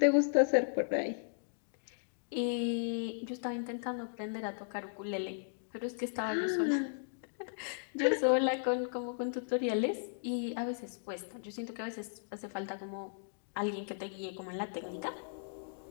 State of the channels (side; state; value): right; silent; digital silence